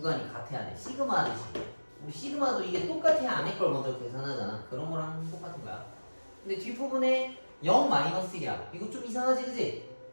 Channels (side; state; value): both; inverted; correlation -1.00